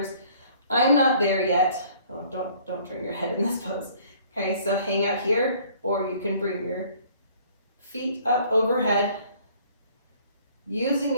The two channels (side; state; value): both; inverted; correlation -0.56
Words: I'm not there yet. Oh, don't turn your head in this pose. Okay, so hang out here, or you can bring your feet up overhead, using